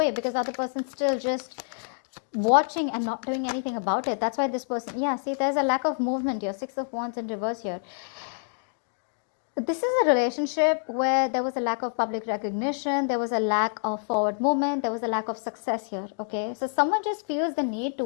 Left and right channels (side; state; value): right; silent; digital silence